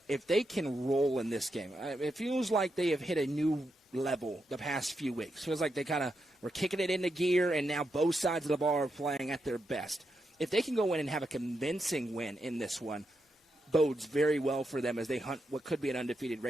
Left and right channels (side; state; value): both; normal; correlation 0.84